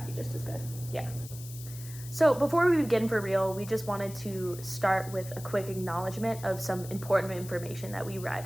be just as good. Yeah. So before we begin for real, we just wanted to start with a quick acknowledgement of some important information that we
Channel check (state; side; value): noise; left; hiss, 15 dB below the sound